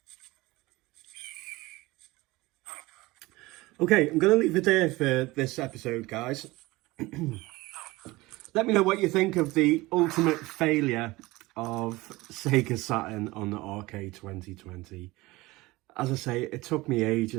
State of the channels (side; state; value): left; quieter; 20.6 dB